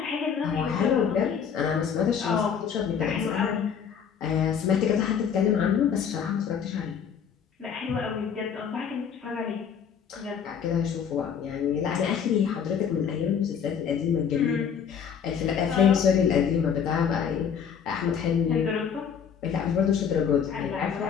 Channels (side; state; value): right; quieter; 7.5 dB